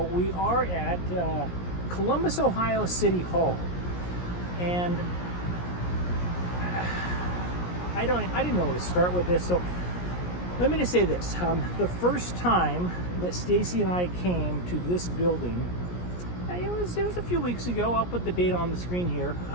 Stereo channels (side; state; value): right; late; 17 ms